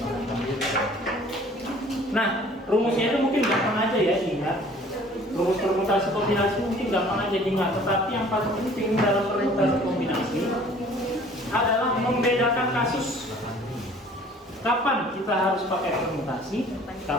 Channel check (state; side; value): normal; both; correlation 0.52